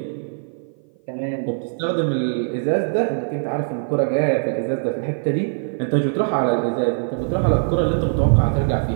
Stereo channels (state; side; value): silent; left; 55 dB below the other